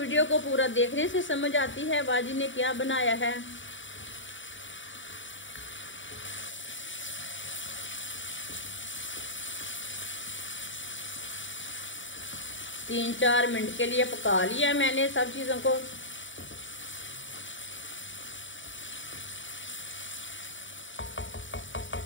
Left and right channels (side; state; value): right; late; 0.55 ms